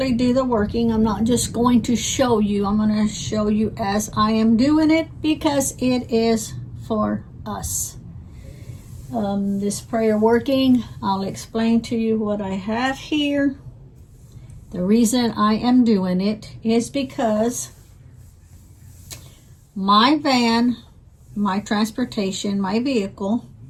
do the working. I'm not just going to show you. I'm going to show you as I am doing it because it is for us. This prayer working, I'll explain to you what I have here. The reason I am doing it is because my van, my transportation, my vehicle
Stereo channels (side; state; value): both; identical; correlation 1.00